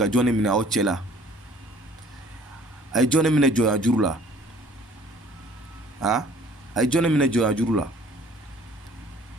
jɔn de minɛ aw cɛ la a ye jɔn de minɛ jɔnya juru la a ye jɔn de minɛ jɔnya juru la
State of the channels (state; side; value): normal; both; correlation 0.54